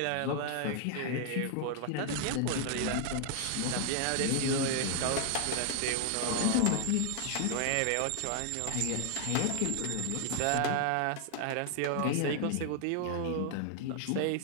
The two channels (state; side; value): different; both; correlation 0.00